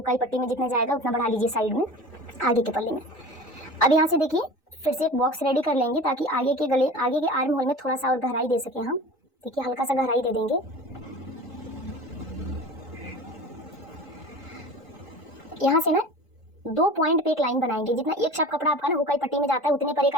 पट्टी में जितना जाएगा उतना बढ़ा लीजिए साइड में आगे के पल्ले में। अब यहाँ से देखिए फिर से एक बॉक्स रेडी कर लेंगे ताकि आगे के आर्म होल में थोड़ा सा और गहराई दे सकें हम। देखिए हल्का सा गहराई दे देंगे। यहाँ से ना 2 पॉइंट पे एक लाइन बनाएंगे। जितना एक शाप कपड़ा आपका ना हुकाई पट्टी में जाता है उतने पर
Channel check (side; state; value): both; normal; correlation 0.37